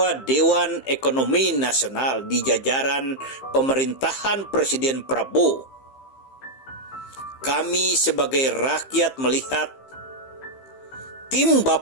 Dewan Ekonomi Nasional di jajaran pemerintahan Presiden Prabowo, kami sebagai rakyat melihat tim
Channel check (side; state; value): right; late; 15 ms